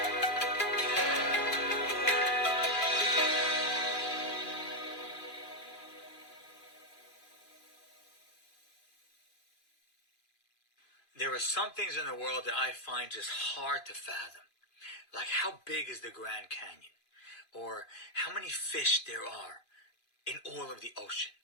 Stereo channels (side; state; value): right; late; 2.5 ms